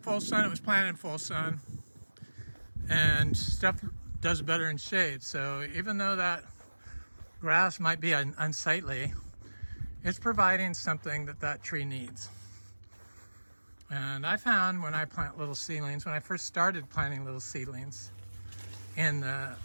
sun. It was planted in full sun, and stuff does better in shade. So even though that grass might be unsightly, it's providing something that that tree needs. And I found when I plant little seedlings, when I first started planting little seedlings in the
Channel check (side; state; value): both; inverted; correlation -1.00